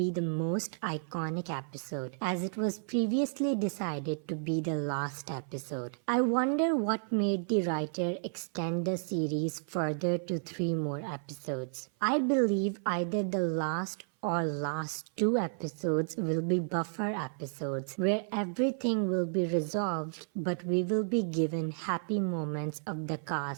the most iconic episode, as it was previously decided to be the last episode. I wonder what made the writer extend the series further to 3 more episodes. I believe either the last or last 2 episodes will be buffer episodes where everything will be resolved, but we will be given happy moments of the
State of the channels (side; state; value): left; silent; 56 dB below the other